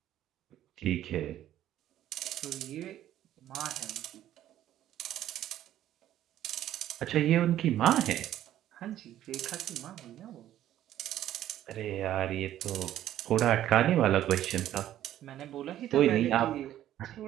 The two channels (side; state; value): left; quieter; 12.3 dB